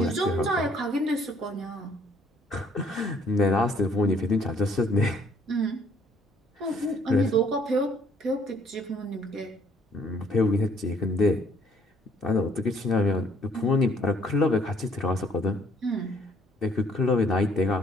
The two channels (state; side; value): normal; both; correlation 0.62